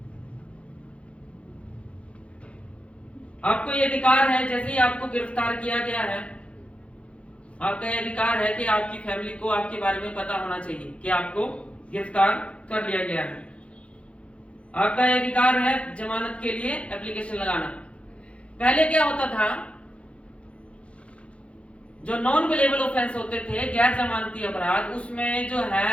आपको ये अधिकार है, जैसे ही आपको गिरफ्तार किया गया है, आपका ये अधिकार है कि आपकी फैमिली को आपके बारे में पता होना चाहिए कि आपको गिरफ्तार कर लिया गया है। आपका ये अधिकार है जमानत के लिए एप्लीकेशन लगाना। पहले क्या होता था, जो नॉन बेलेबल ऑफेंस होते थे, गैर जमानती अपराध, उसमें जो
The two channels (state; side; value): late; right; 0.061 ms